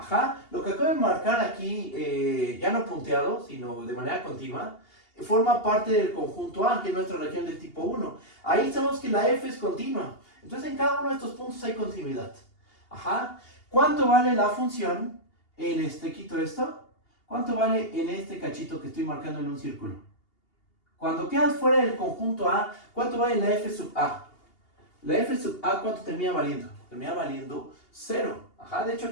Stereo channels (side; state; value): right; late; 2.8 ms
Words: lo que acabo de marcar aquí, ya no punteado, sino de manera continua, forma parte del conjunto A, que es nuestra región del tipo 1. Ahí sabemos que la f es continua. Entonces en cada uno de estos puntos hay continuidad. Ajá. ¿Cuánto vale la función en quito esto? ¿Cuánto vale en este cachito que estoy marcando en un círculo? Cuando quedas fuera del conjunto A, ¿cuánto vale la f sub A? La f sub A, ¿cuánto termina valiendo? Termina valiendo 0. Ajá, de hecho